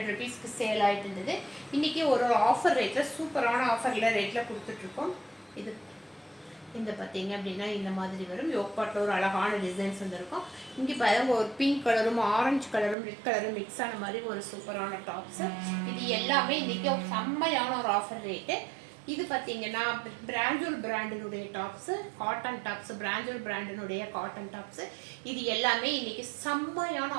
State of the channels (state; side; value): drops out; left; at 13.0 s